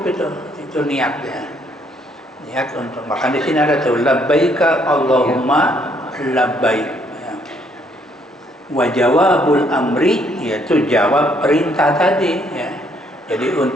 itu niatnya. Niat untuk makan di sini ada tuh labbaika Allahumma labbaik. Ya. Wa jawabul amri yaitu jawab perintah tadi ya. Jadi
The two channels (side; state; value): both; normal; correlation 0.68